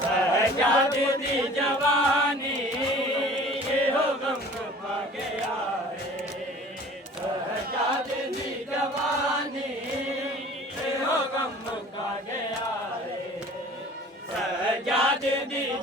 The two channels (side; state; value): both; normal; correlation 0.46